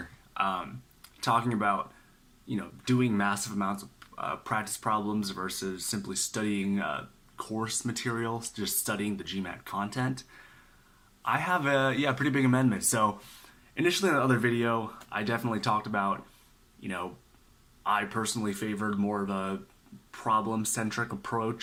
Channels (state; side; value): identical; both; correlation 1.00